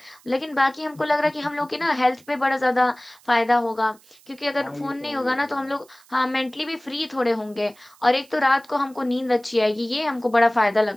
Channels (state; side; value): noise; right; hiss, 28 dB below the sound